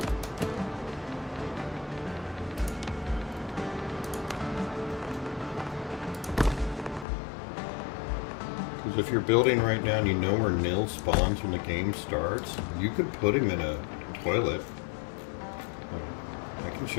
Because if you're building right now and you know where Nil spawns when the game starts, you could put him in a toilet. I can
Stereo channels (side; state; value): right; drops out; at 7.1 s